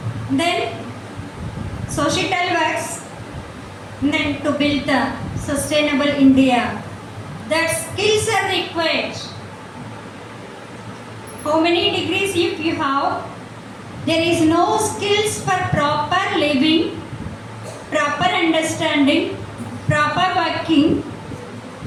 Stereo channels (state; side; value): identical; both; correlation 1.00